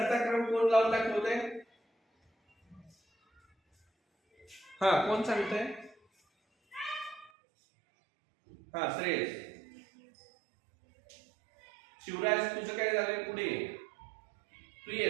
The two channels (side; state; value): left; drops out; at 7.3 s